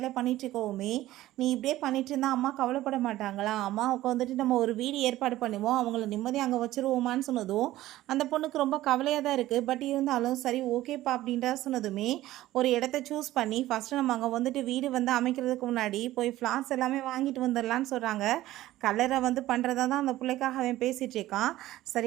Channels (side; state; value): left; quieter; 15.5 dB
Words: பண்ணிட்டு இருக்கோமே, நீ இப்படியே பண்ணிட்டு இருந்தால் அம்மா கவலைப்பட மாட்டாங்களா, அம்மாவுக்கு வந்துட்டு நம்ம ஒரு வீடு ஏற்பாடு பண்ணுவோம், அவங்கள நிம்மதியாக அங்கே வச்சுருவோமான்னு சொன்னதும் அந்த பொண்ணுக்கு ரொம்ப கவலையாக தான் இருக்குது. பட் இருந்தாலும் சரி ஓகேப்பா அப்படின்றா சொன்னதுமே ஒரு இடத்த சூஸ் பண்ணி ஃபஸ்ட்டு நம்ம அங்கே வந்துட்டு வீடு வந்து அமைக்கிறதுக்கு முன்னாடி போய் ஃப்ளார்ஸ் எல்லாமே வாங்கிட்டு வந்துடலான்னு சொல்கிறாங்க. கலரை வந்து பண்ணுறதா தான் அந்த பிள்ளைக்காக அவன் பேசிகிட்டு இருக்கான்.